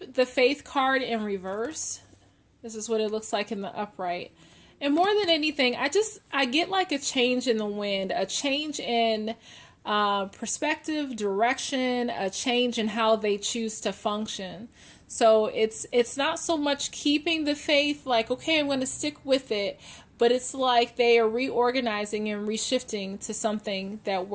the faith card in reverse. This is what it looks like in the upright. And more than anything, I get like a change in the wind, a change in perspective, direction, a change in how they choose to function. So it's not so much keeping the faith, like, okay, I'm going to stick with it, but it's like they are reorganizing and reshifting to something that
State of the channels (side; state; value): both; identical; correlation 1.00